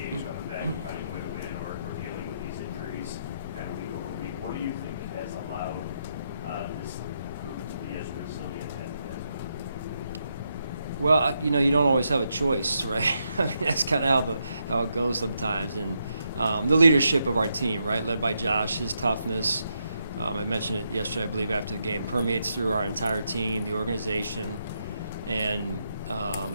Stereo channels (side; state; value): both; inverted; correlation -0.81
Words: coming back, and finding a way to win, or dealing with these injuries kind of week over week. What do you think has allowed this group to be as resilient as it has been? Well, you don't always have a choice, right? I mean, that's kind of how it goes sometimes. And the leadership of our team, right, led by Josh, his toughness, I mentioned it yesterday, I believe, after the game, permeates through our entire team, the organization, and